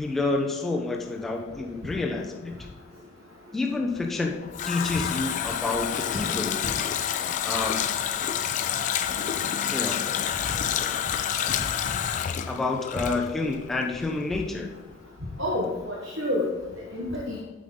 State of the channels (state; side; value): quieter; right; 4.9 dB